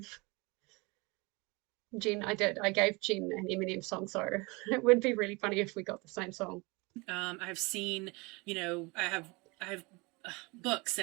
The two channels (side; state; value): left; quieter; 26.7 dB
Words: Jen an Eminem song, so it would be really funny if we got the same song. I've seen, I have books